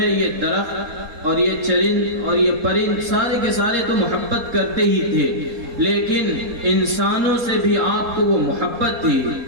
یہ درخت اور یہ چرند اور یہ پرند سارے کے سارے تو محبت کرتے ہی تھے، لیکن انسانوں سے بھی آپ کو وہ محبت تھی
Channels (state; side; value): late; left; 4.2 ms